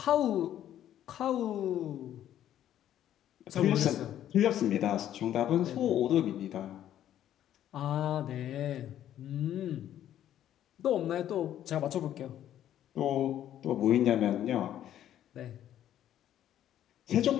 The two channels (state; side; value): quieter; right; 11.4 dB